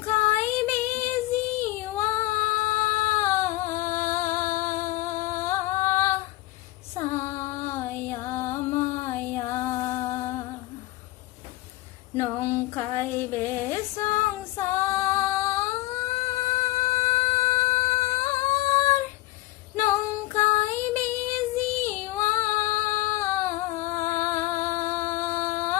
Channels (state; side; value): quieter; right; 18.1 dB